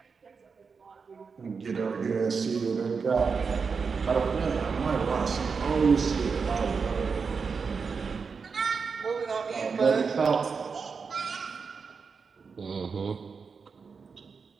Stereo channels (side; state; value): left; quieter; 5.3 dB